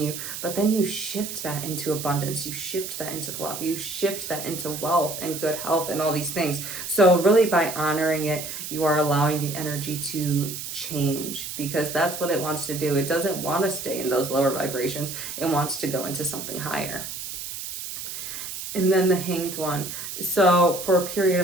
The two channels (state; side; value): noise; right; hiss, 7 dB below the sound